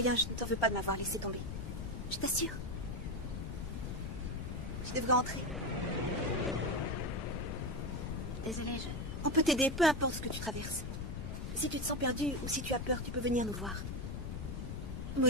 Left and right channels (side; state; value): left; noise; rumble, 5 dB below the sound